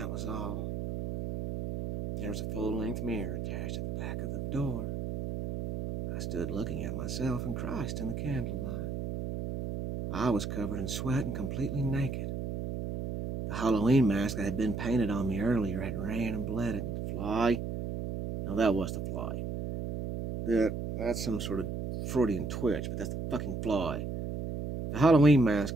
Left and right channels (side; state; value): right; noise; hum, 4 dB below the sound